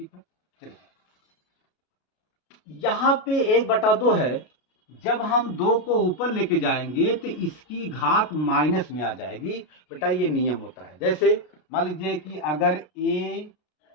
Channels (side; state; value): right; late; 33 ms